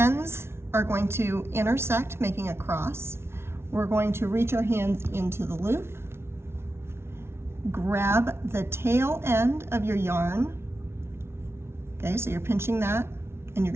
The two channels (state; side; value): late; left; 0.12 ms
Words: are going to intersect, making a cross. We're going to reach our hands into the loop, grab the tail end of your yarn. Okay, so you're pinching that and you're